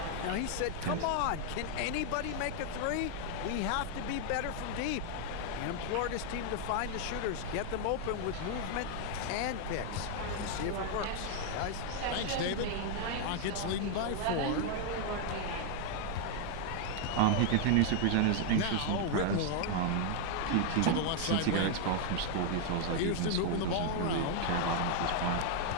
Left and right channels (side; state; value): both; different; correlation 0.00